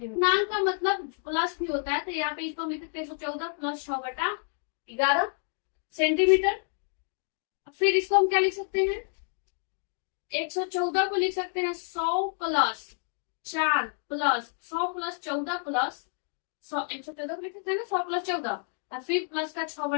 पूर्णांक का मतलब प्लस भी होता है, तो यहाँ पे इसको हम लिख सकते हैं 114 प्लस 6 बटा 11 सेंटीमीटर। फिर इसको हम क्या लिख सकते हैं, 114 को लिख सकते हैं 100 प्लस 4 प्लस 100 प्लस 14 प्लस 100, 114 को लिख सकते हैं ना 100 प्लस 14 और फिर प्लस का 6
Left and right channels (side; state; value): right; silent; 58 dB below the other